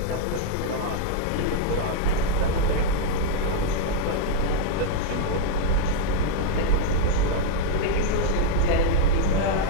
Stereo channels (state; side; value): different; both; correlation -0.01